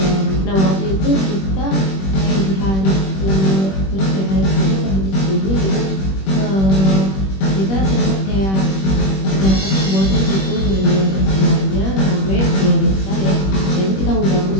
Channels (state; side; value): late; right; 21 ms